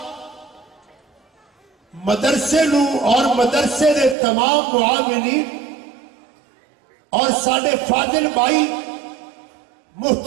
مدرسے نو اور مدرسے دے تمام معاونین اور ساڈے فاضل بھائی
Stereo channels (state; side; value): drops out; left; at 4.2 s